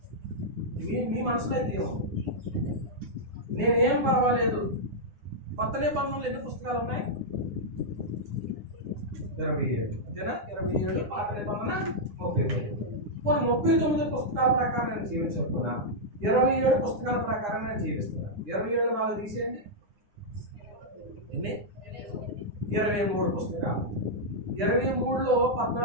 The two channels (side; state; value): left; late; 9.8 ms